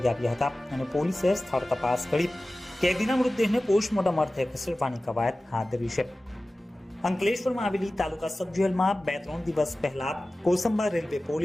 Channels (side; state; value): both; normal; correlation 0.96